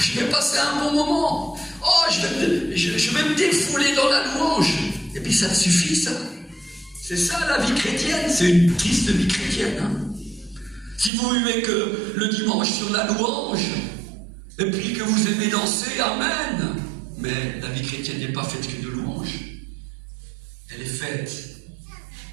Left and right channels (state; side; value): drops out; left; at 11.1 s